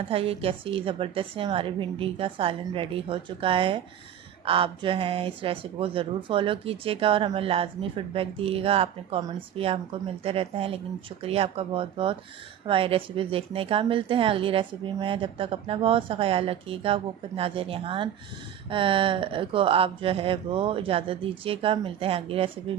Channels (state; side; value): quieter; left; 10.2 dB